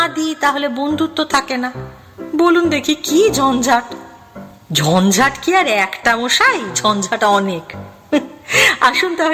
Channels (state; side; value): identical; both; correlation 1.00